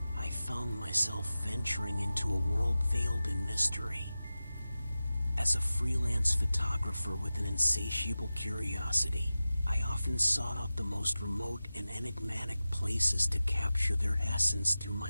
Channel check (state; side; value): inverted; both; correlation -0.95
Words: I found myself venturing into a world veiled in mystery. As a freelance photographer with an insatiable curiosity, I often sought out the most remote and enigmatic places to capture their essence through